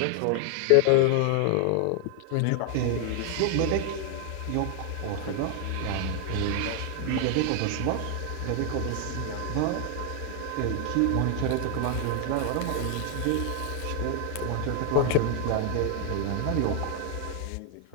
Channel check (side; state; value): both; different; correlation 0.00